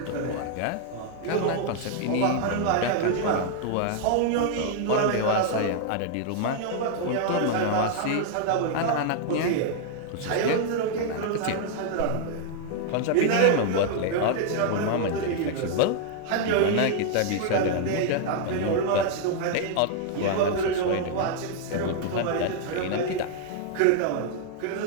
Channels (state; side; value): different; both; correlation 0.00